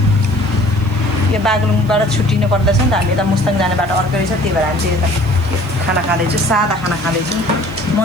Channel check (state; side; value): noise; right; hiss, 27 dB below the sound